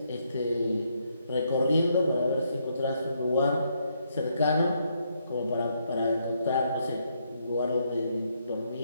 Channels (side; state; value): both; inverted; correlation -0.75